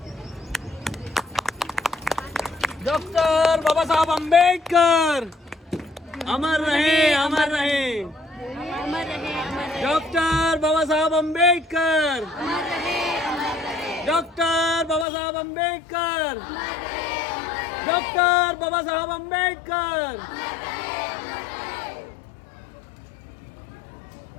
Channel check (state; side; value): drops out; right; at 15.1 s